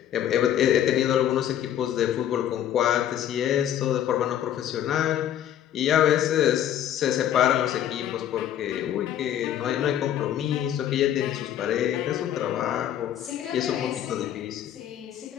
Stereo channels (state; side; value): quieter; right; 10.9 dB